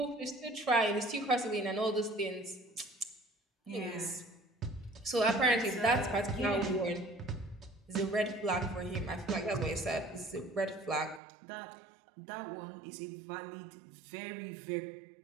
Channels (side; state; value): left; drops out; at 11.2 s